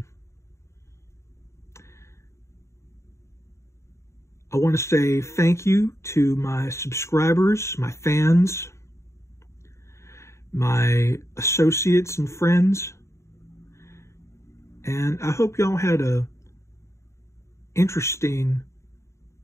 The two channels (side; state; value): right; late; 0.14 ms